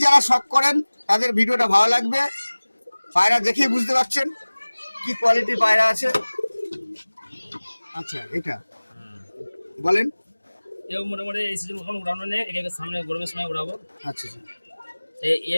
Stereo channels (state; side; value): inverted; both; correlation -1.00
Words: যারা শখ করেন তাদের ভিডিওটা ভালো লাগবে। পায়রা দেখেই বুঝতে পারছেন কি কোয়ালিটির পায়রা আছে। আচ্ছা এটা বলেন। এও মোটামুটি এই সিজন এখন উড়ানো নেই, একে সামনে গরমের সময় উড়াবো। আচ্ছা আচ্ছা।